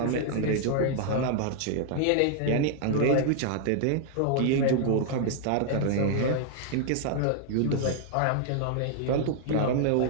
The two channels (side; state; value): both; different; correlation 0.00